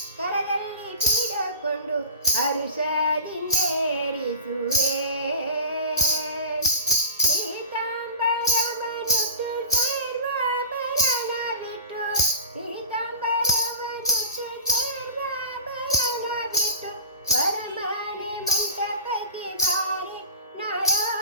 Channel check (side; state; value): both; inverted; correlation -0.38